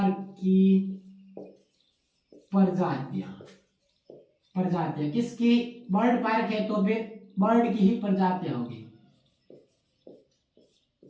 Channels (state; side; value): identical; both; correlation 1.00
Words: की प्रजातियां किसकी? बर्ड पार्क है तो फिर बर्ड की ही प्रजातियां होगी।